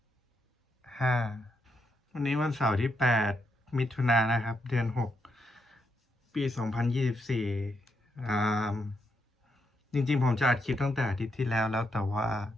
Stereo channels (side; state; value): both; normal; correlation 0.80